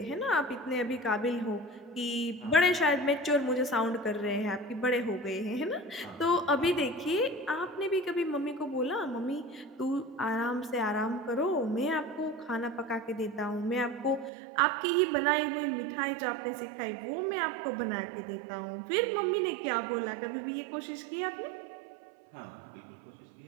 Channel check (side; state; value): left; drops out; at 14.3 s